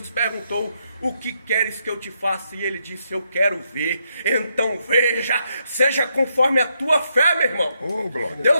perguntou, o que queres que eu te faça? E ele disse, eu quero ver. Então veja, seja conforme a tua fé, meu irmão.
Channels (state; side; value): inverted; both; correlation -0.78